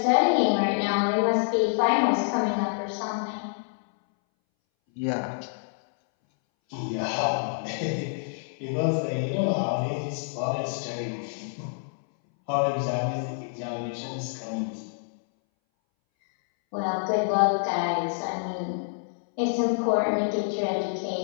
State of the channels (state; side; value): silent; right; 60 dB below the other